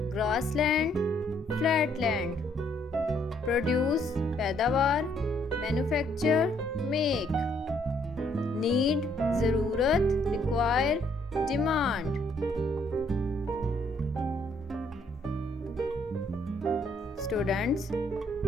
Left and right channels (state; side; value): normal; both; correlation 0.68